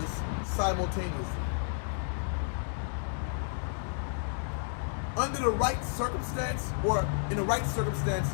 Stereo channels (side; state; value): right; silent; digital silence